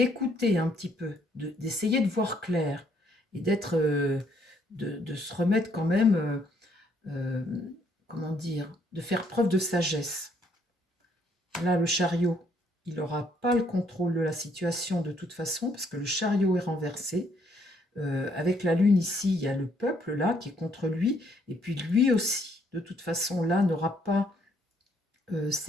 un petit peu, d'essayer de voir clair et d'être, de se remettre quand même, comment dire, de faire preuve de sagesse. Là, le chariot, il n'aura pas le contrôle de la situation de toute façon parce que le chariot est renversé. Avec la lune ici, il y a le peuple là qui est contre lui et puis lui aussi, de toute façon, là, n'aura pas...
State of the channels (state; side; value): normal; both; correlation 0.68